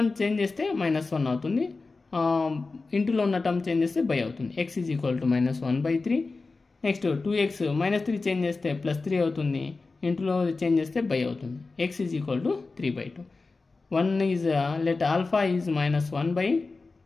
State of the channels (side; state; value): right; quieter; 3.8 dB